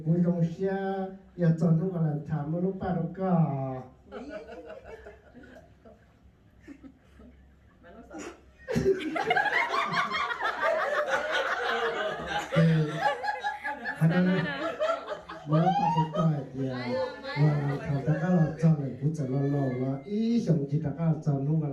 cuối trong xe, giờ chọn lúc là thảm một lúc ba đâu cả. Mới bắt đầu coi thì thằng ta cái là chọn này cũng chọn lo là ý xong chỉ ta cái chọn lúc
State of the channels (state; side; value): identical; both; correlation 1.00